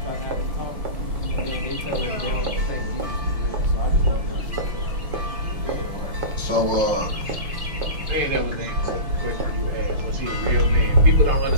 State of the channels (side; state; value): left; late; 6.2 ms